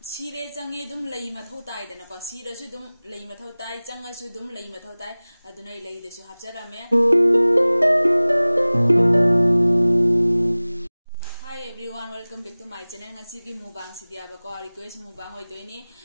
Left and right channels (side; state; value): both; inverted; correlation -0.99